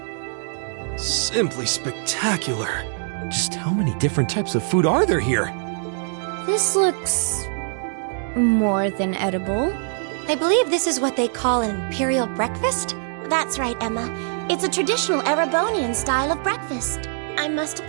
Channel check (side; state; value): left; silent; digital silence